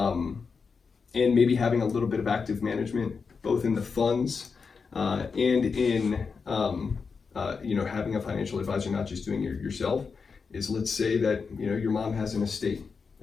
maybe having a little bit of active management, both in the funds and in having a financial advisor, not just doing it yourself, is let's say that your mom has an estate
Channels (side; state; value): right; quieter; 5.3 dB